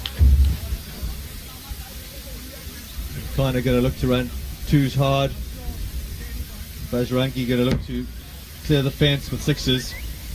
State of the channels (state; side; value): identical; both; correlation 1.00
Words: Kind of going to look to run 2s hard. Bajrangi going to look to clear the fence with 6s.